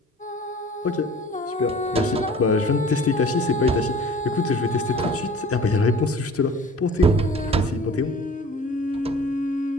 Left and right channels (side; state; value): both; normal; correlation 0.45